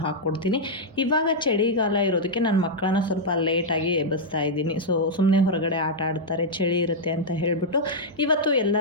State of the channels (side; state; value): both; normal; correlation -0.05